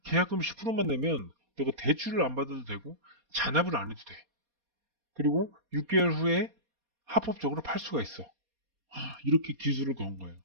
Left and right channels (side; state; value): left; late; 4.2 ms